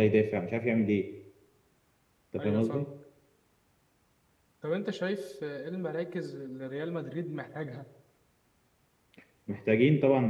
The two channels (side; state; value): both; identical; correlation 1.00